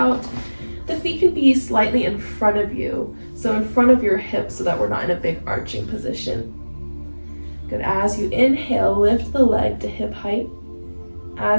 The feet can be slightly in front of you, so in front of your hips so that we're not in a big arching position. Good, as you inhale, lift the leg to hip height.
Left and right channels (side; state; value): both; inverted; correlation -1.00